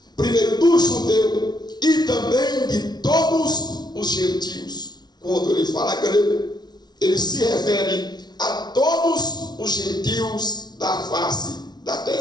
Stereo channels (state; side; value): late; right; 0.20 ms